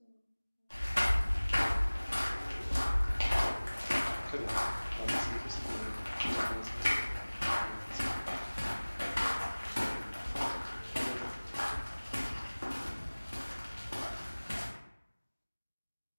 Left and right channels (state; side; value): inverted; both; correlation -1.00